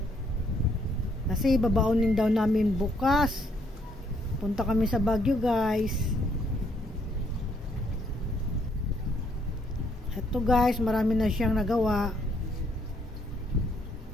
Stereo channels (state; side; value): normal; both; correlation 0.70